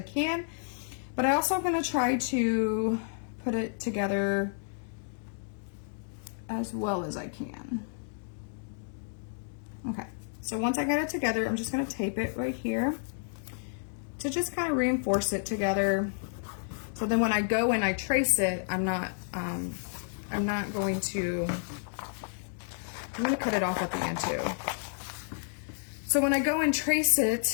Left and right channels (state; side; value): silent; right; digital silence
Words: can, but I also am going to try to put it together as well as I can. Okay, so once I get it together, I'm just going to tape it right here to just kind of reinforce it together. So then when I go and I trace it, I'm going to cut it off at the end too. So when I go and trace